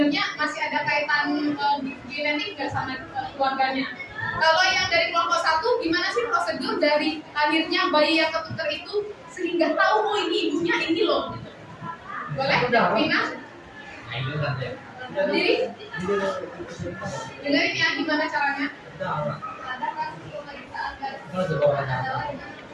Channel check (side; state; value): both; identical; correlation 1.00